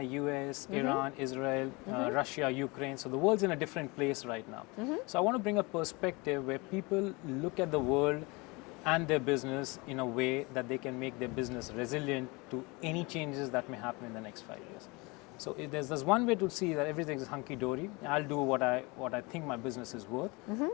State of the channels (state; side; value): quieter; right; 26.4 dB